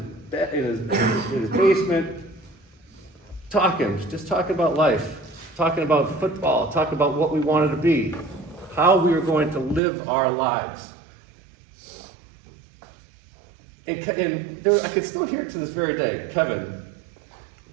basement talking, just talking about life, talking about football, talking about what we wanted to be, how we were going to live our lives. And I could still hear it to this very day. Kevin,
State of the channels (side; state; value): left; drops out; at 9.8 s